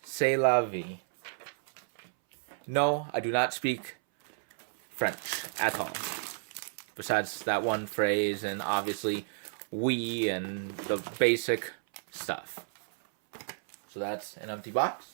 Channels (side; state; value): left; silent; 57 dB below the other